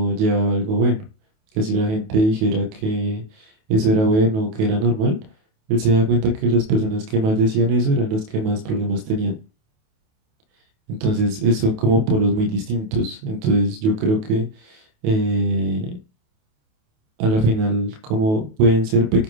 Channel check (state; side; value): late; left; 28 ms